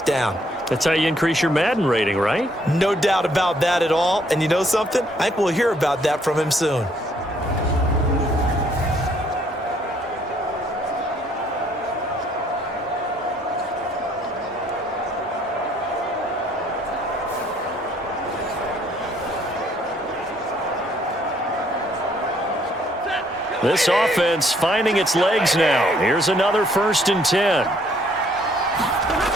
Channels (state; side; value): normal; both; correlation 0.66